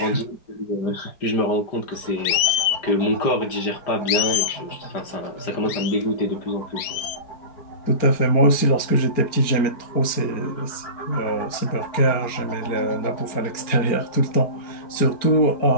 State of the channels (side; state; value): right; late; 4.4 ms